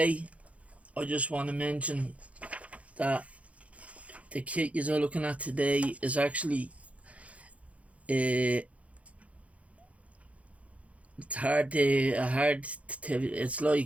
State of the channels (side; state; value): left; late; 0.065 ms